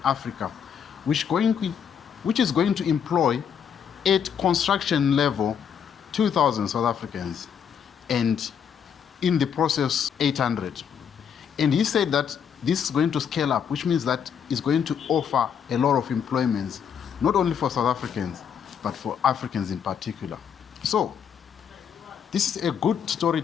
Africa, which is going to employ at construction level 2,000 South Africans, and in the process 800. And he said that this is going to scale up, which means that it's going to offer a lot of employments, not only for South Africans, but for Africans in particular. So this is a good story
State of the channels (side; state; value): right; quieter; 7.8 dB